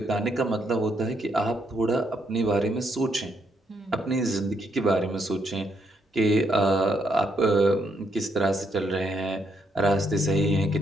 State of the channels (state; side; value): normal; both; correlation 0.75